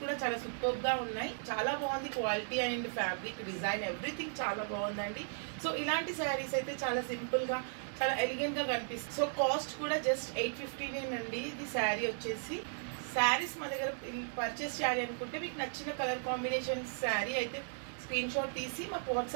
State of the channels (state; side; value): silent; left; digital silence